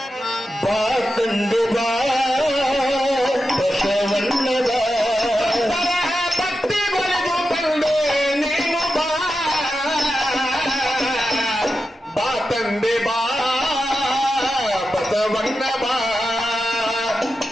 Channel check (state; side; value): normal; both; correlation 0.90